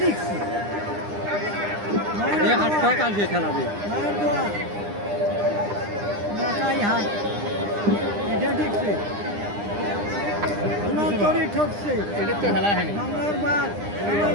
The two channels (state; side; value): late; left; 9.9 ms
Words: দেখছি। এই 8টা কালকে খেলাবে। মায়ের দোয়া নৌকাই হাট এটা দেখছি। ঠকছে এটা তো খেলা হয়নি। বাংলার বাদ